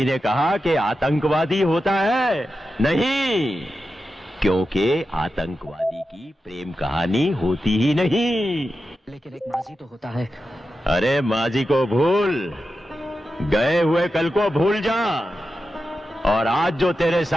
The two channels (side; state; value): both; normal; correlation 0.91